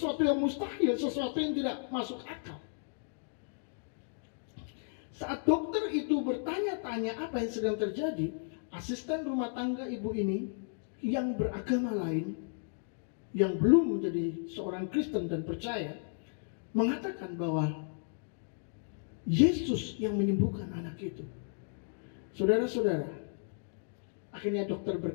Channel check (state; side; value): silent; right; digital silence